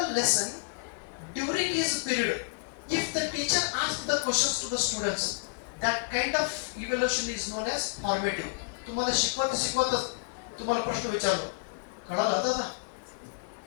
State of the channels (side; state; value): right; quieter; 32.2 dB